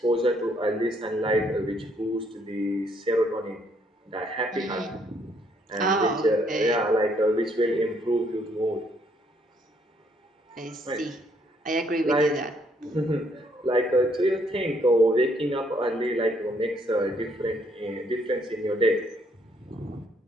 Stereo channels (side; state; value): both; normal; correlation 0.69